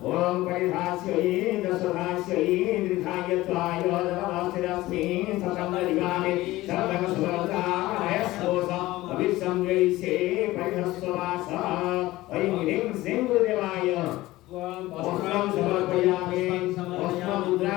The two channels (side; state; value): right; quieter; 17.7 dB